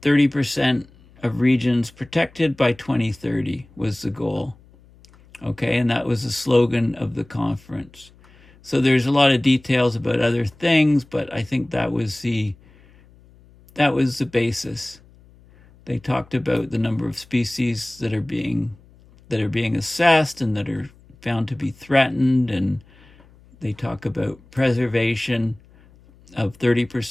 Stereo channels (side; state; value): left; noise; hum, 27 dB below the sound